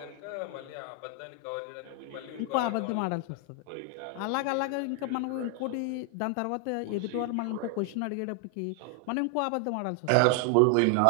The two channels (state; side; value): different; both; correlation 0.00